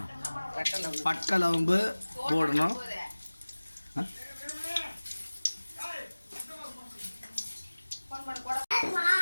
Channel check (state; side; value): inverted; both; correlation -1.00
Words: பட்டை லவங்கு போடணும்.